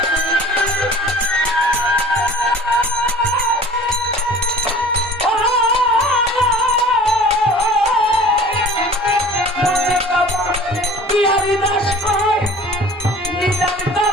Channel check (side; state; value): both; normal; correlation 0.44